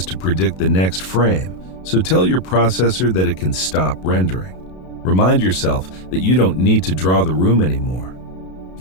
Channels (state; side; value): late; right; 32 ms